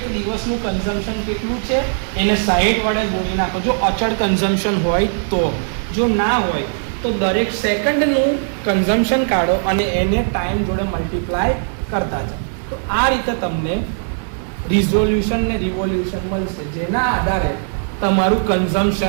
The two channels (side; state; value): left; silent; 67 dB below the other